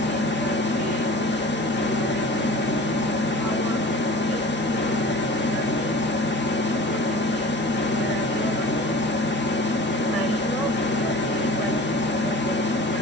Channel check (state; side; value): normal; both; correlation 0.41